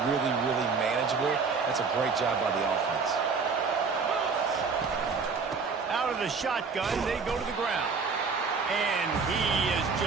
really, really manageable. That's a great job by the offense. Out of the shotgun, they go to the ground. And he is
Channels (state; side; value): quieter; left; 5.0 dB